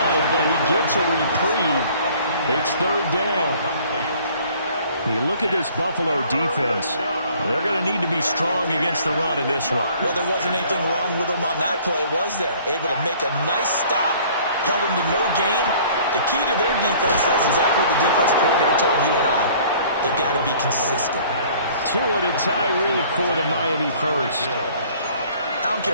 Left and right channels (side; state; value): both; inverted; correlation -0.54